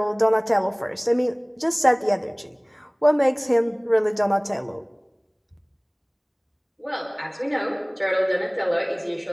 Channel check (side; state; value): both; identical; correlation 1.00